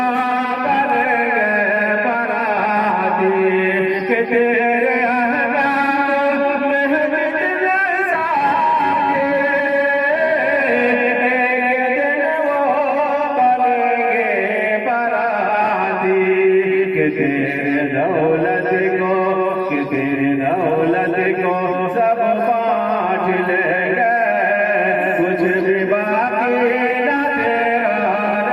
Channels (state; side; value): identical; both; correlation 1.00